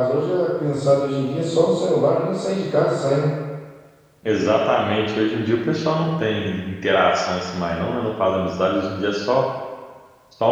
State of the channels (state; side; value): identical; both; correlation 1.00